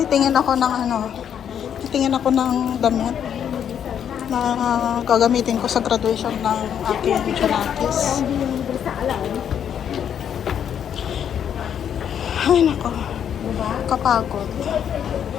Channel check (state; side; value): quieter; right; 8.8 dB